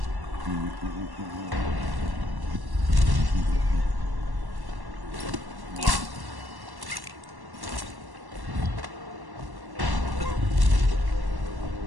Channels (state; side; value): late; left; 1.1 ms